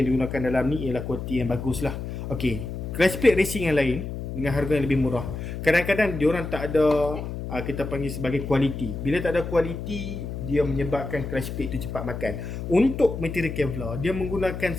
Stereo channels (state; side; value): noise; left; hum, 6 dB below the sound